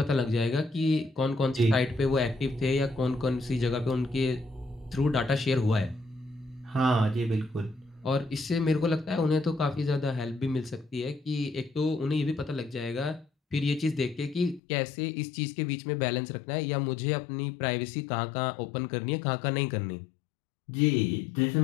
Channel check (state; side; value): drops out; right; at 14.6 s